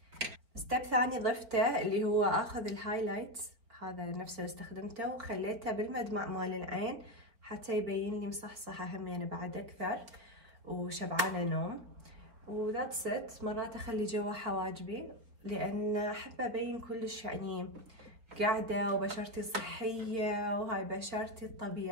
ستيب ثاني ضفته اللي هو اخذ الهايلايت هذا نفسه اللي استخدمته وخليته بالمدمع مال العين حتى يبين لي مصحصحه همين بعد اكثر. وشبعانة نوم وذاتس ات. مرات اخلي جوا حواجبي لان احب ابين كلش يعني قاعدة وبشرتي صحية وهاي بشرتي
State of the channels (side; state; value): left; late; 4.3 ms